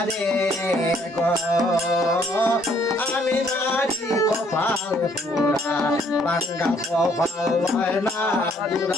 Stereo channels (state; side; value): normal; both; correlation 0.65